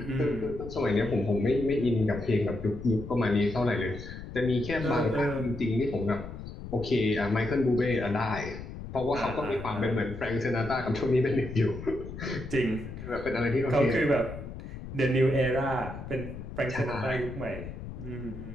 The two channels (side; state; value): left; noise; rumble, 10 dB below the sound